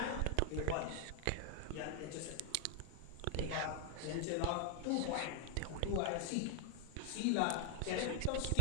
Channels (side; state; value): both; different; correlation 0.00